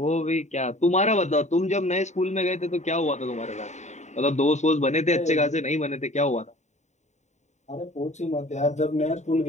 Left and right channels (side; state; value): right; late; 0.34 ms